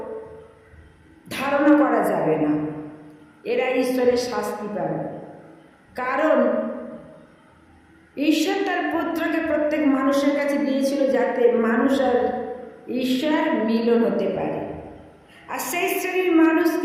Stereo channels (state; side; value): identical; both; correlation 1.00